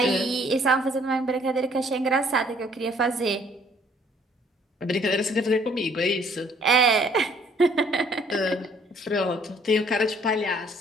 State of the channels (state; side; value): normal; both; correlation 0.61